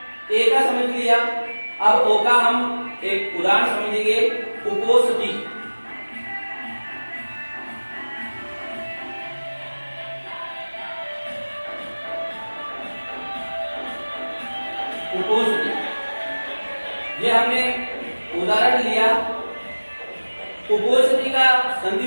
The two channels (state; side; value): inverted; both; correlation -1.00